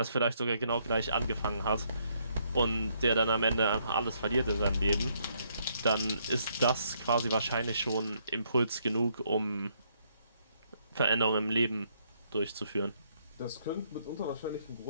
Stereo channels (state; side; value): inverted; both; correlation -0.72